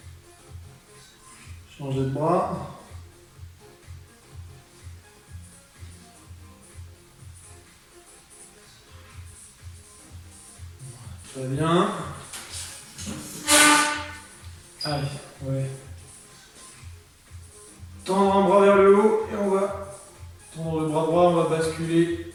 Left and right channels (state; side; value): identical; both; correlation 1.00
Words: Changer de bras. Très bien. Allez, ouais. Tendre un bras vers le haut et on va tendre le bras droit, on va basculer